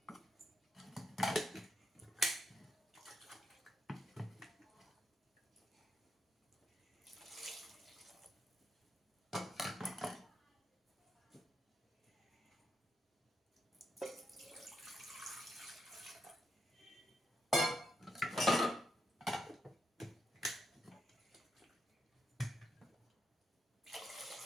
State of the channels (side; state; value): both; normal; correlation 0.82